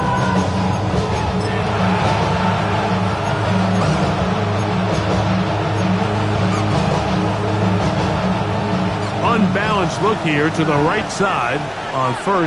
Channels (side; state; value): both; identical; correlation 1.00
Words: Unbalanced look here to the right side on